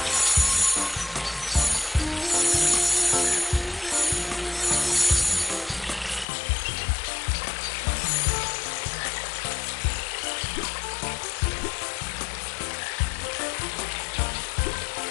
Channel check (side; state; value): right; drops out; at 6.2 s